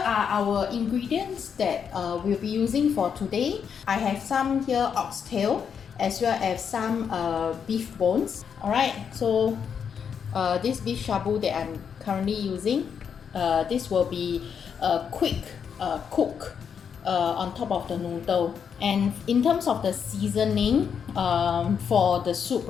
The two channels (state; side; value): quieter; right; 7.2 dB